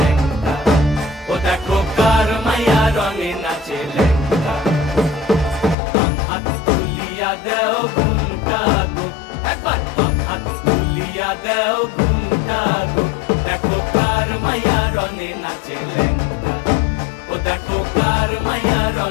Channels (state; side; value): drops out; right; at 5.8 s